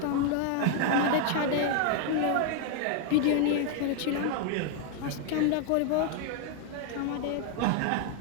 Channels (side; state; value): both; different; correlation 0.00